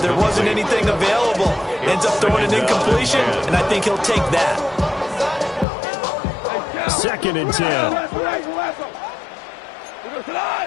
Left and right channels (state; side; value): drops out; right; at 5.7 s